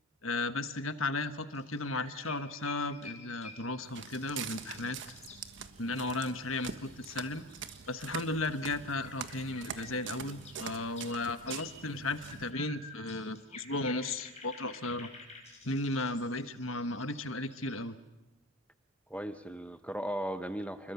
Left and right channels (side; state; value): both; normal; correlation 0.31